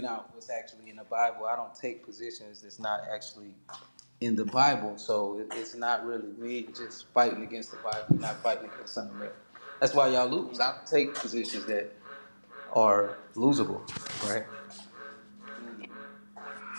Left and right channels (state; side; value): inverted; both; correlation -1.00